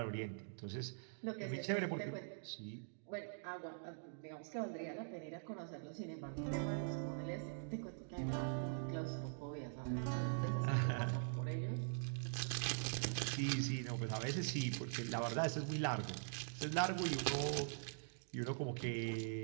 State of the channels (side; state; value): left; silent; digital silence